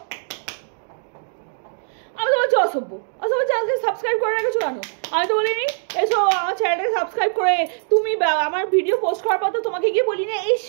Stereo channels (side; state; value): left; silent; digital silence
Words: আমি তো বলছি অসভ্য। অসভ্য চ্যানেলকে সাবস্ক্রাইব করে রেখেছো কেন? আমি তো বলিনি এসো আমার চ্যানেলটাকে সাবস্ক্রাইব করে। তুমি আমার ভিডিও পোস্ট করার পর তো তোমাকে গিয়ে বলিনি